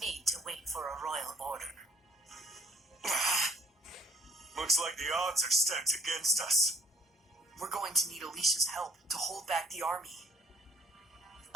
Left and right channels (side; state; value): both; normal; correlation 0.59